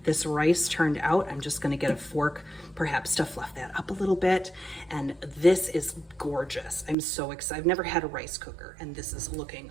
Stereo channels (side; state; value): left; drops out; at 7.0 s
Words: this rice turned out. I'm just gonna get a fork perhaps to fluff that up a little bit. And this is gorgeous. I'm so excited. I've never had a rice cooker, and this is looking